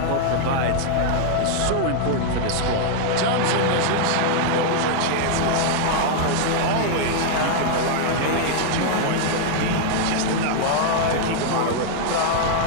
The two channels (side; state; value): both; different; correlation 0.00